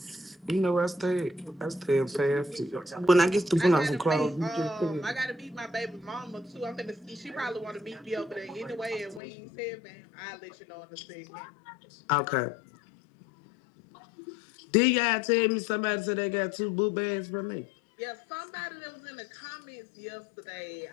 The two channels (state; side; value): drops out; right; at 9.2 s